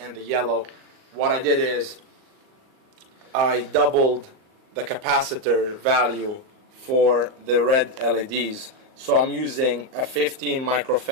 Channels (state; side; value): late; left; 38 ms